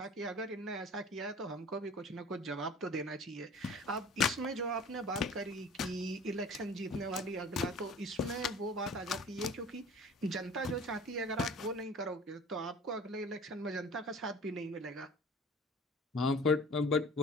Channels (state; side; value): normal; both; correlation 0.44